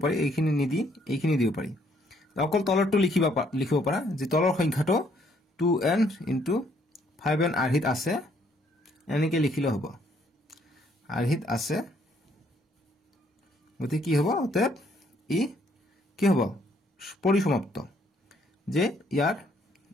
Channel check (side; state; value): both; normal; correlation 0.67